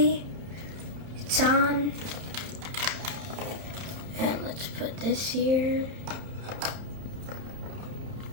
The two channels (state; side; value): late; left; 31 ms